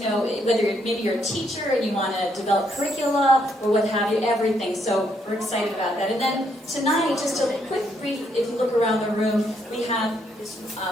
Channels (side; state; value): both; normal; correlation 0.74